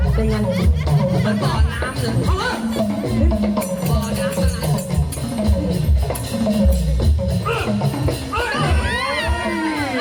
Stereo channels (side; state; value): both; identical; correlation 1.00